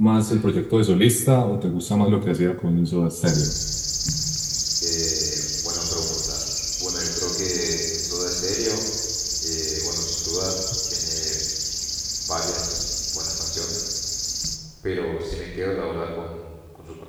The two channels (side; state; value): both; identical; correlation 1.00